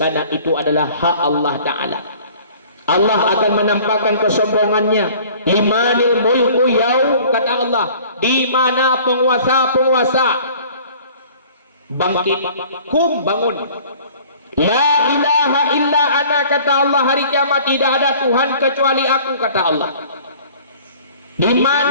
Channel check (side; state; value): both; inverted; correlation -0.50